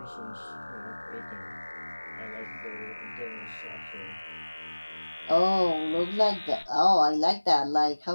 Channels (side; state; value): both; inverted; correlation -1.00